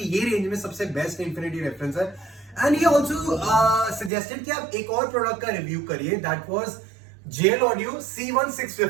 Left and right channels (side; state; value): left; drops out; at 4.1 s